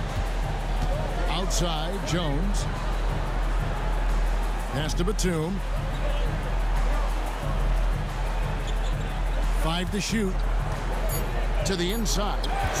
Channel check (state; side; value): identical; both; correlation 1.00